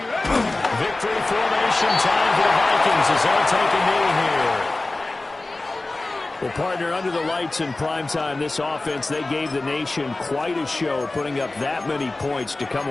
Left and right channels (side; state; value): right; quieter; 3.0 dB